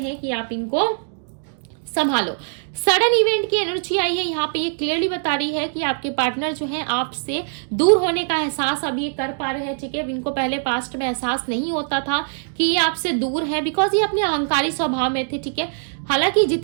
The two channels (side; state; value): left; silent; digital silence